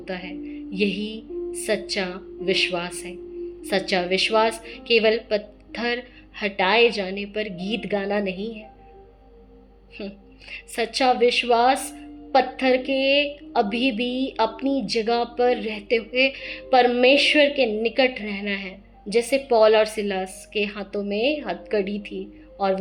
है। यही सच्चा विश्वास है। सच्चा विश्वास केवल पत्थर हटाए जाने पर गीत गाना नहीं है। सच्चा विश्वास पत्थर के अभी भी अपनी जगह पर रहते हुए परमेश्वर के निकट रहना है। जैसे पौल और सिलास के हाथों में हथकड़ी थी और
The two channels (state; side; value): identical; both; correlation 1.00